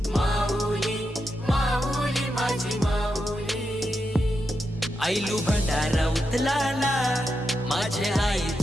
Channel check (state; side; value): normal; both; correlation 0.86